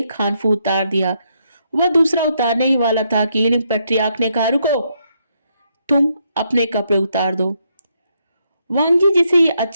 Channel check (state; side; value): inverted; both; correlation -0.77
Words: हानफू उतार दिया। वह दूसरा उतारने ही वाला था कि हीलिंग पैट्रियार्क ने कहा, रुको, तुम अपने कपड़े उतार दो। वांगजी जिसे ये